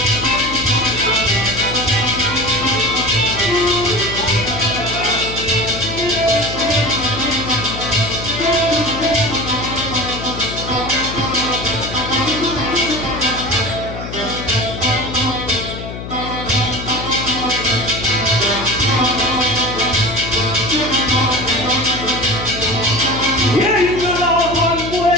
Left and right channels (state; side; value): noise; left; hum, 9 dB below the sound